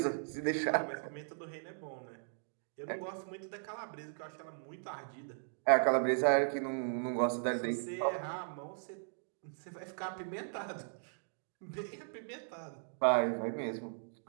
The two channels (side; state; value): left; silent; digital silence